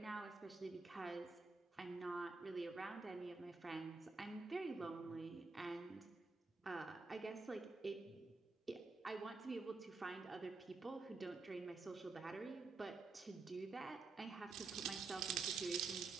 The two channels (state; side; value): quieter; left; 3.9 dB